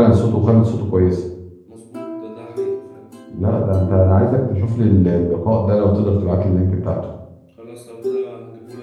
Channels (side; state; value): both; identical; correlation 1.00